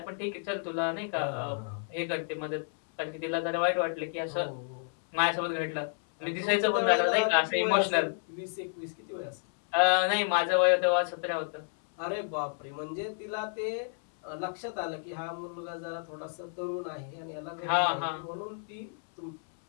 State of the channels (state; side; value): silent; right; 57 dB below the other